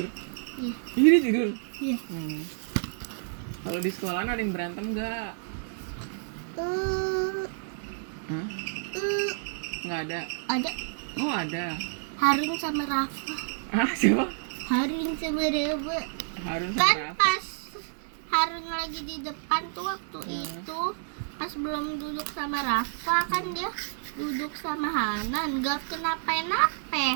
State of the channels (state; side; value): silent; left; digital silence